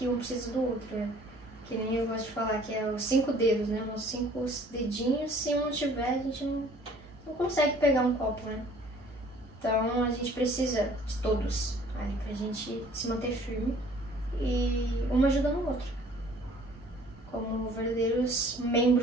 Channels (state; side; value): normal; both; correlation 0.54